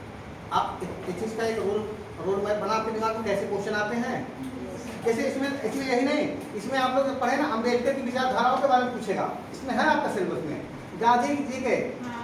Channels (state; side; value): identical; both; correlation 1.00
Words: आप इस चीज का एक रोड मैप बना के दिमाग में कैसे क्वेश्चन आते हैं, जैसे इसमें यही नहीं, इसमें आप लोग पढ़े ना अम्बेडकर की विचारधाराओं के बारे में पूछेगा, इसमें है आपका सिलेबस में। गांधी